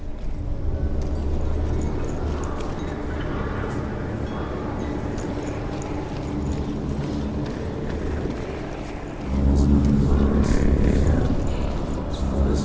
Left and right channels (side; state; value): both; identical; correlation 1.00